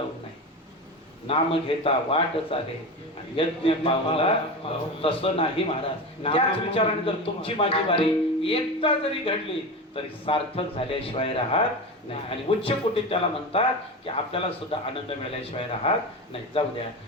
नाही, नाम घेता वाट चाले आणि यज्ञ पावला तसं नाही महाराज. त्याच विचाराने जर तुमची माझी वारी एकदा जरी घडली तरी सार्थक झाल्याशिवाय राहत नाही. आणि उच्च कोटीत त्याला म्हणतात की आपल्याला सुद्धा आनंद मिळाल्याशिवाय राहत नाही. जाऊ द्या.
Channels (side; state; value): both; normal; correlation 0.24